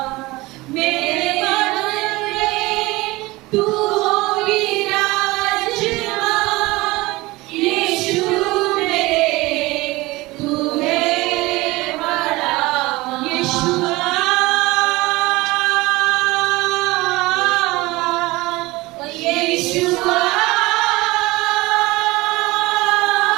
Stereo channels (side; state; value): left; quieter; 21.0 dB